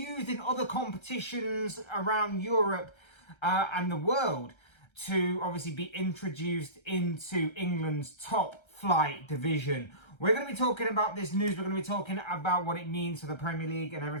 in other competitions around Europe and the world to obviously be introduced into England's top flight division. We're going to be talking about this news. We're going to be talking about what it means for the Premier League and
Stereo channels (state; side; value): late; right; 1.3 ms